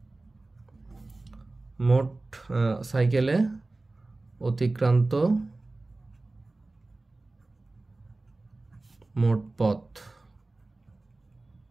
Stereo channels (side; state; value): left; quieter; 3.1 dB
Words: সাইকেলে অতিক্রান্ত মোট পথ